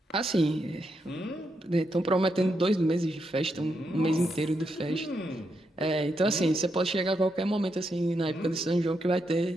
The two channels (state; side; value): normal; both; correlation 0.82